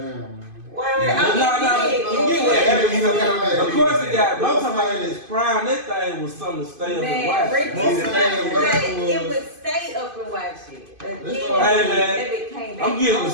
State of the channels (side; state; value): left; late; 2.5 ms